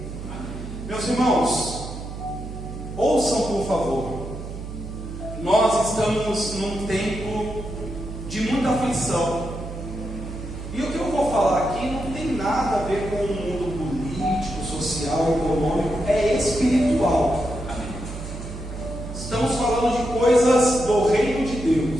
Meus irmãos, ouçam por favor. Nós estamos num tempo de muita aflição. E o que eu vou falar aqui não tem nada a ver com o mundo político, social, econômico, é espiritual. Estamos falando de coisas do reino de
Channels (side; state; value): right; noise; hum, 9 dB below the sound